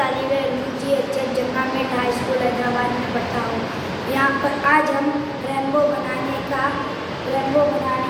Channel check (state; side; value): identical; both; correlation 1.00